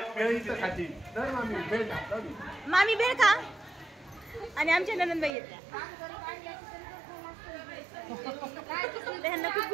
मामी भेळ खा. आणि आमच्या ननंदबाई येत्या. त्यांना खूप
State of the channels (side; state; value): left; drops out; at 5.3 s